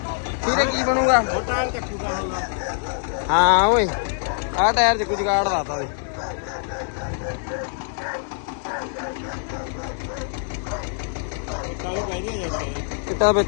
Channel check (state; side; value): silent; right; digital silence